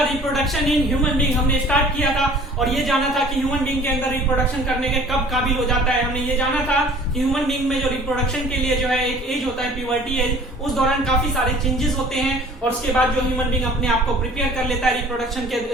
रिप्रोडक्शन इन ह्यूमन बीइंग। हमने स्टार्ट किया था और ये जाना था कि ह्यूमन बीइंग के अंदर रिप्रोडक्शन करने के कब काबिल हो जाता है। हमने ये जाना था कि ह्यूमन बीइंग में जो रिप्रोडक्शन के लिए जो है एक एज होता है, प्यूबर्टी एज, उस दौरान काफी सारे चेंजेस होते हैं और उसके बाद जो ह्यूमन बीइंग अपने आप को प्रिपेयर कर लेता है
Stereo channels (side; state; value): both; normal; correlation 0.49